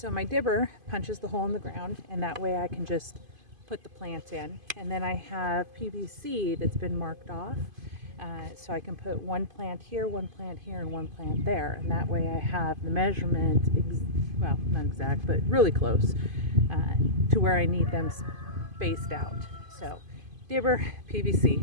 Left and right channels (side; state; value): left; late; 2.5 ms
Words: my dibber punches the hole in the ground, and that way I can just put the plant in, and then I have PVC that's been marked off. So I can put one plant here, and one plant there, and that way I have the measurement, well, not exact, but really close to where I need them spaced out. So dibber, PVC,